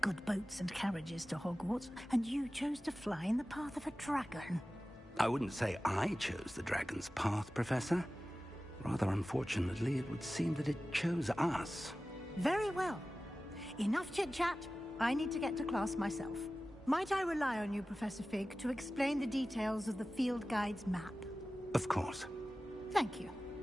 good boats and carriages to Hogwarts, and you chose to fly in the path of a dragon. I wouldn't say I chose the dragon's path, Professor. Rather unfortunately, it would seem that it chose us. Very well. Enough chit-chat. I need to get to class myself. Might I rely on you, Professor Fig, to explain the details of the field guide's map? Of course. Thank you.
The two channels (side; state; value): both; normal; correlation 0.96